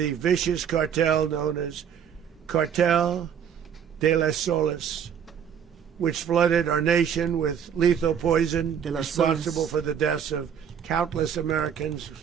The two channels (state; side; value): quieter; left; 8.2 dB